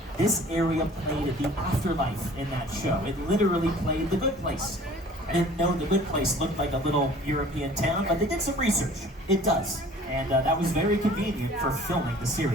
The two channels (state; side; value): normal; both; correlation 0.49